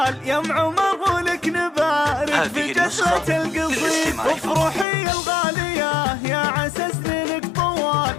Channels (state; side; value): drops out; right; at 4.9 s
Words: يا ام عمر ولك نبارك في جسرة القصيد. افرحي الغالية يا عسى سنينك طوال،